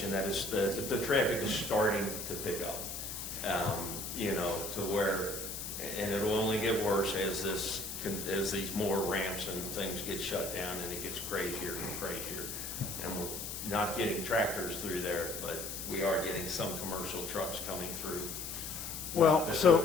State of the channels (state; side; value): noise; left; hiss, 6 dB below the sound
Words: that is the traffic is starting to pick up, you know, to where, and it'll only get worse as as these more ramps and things get shut down and it gets crazier and crazier. And we're not getting tractors through there, but we are getting some commercial trucks coming through. Well, Not that so-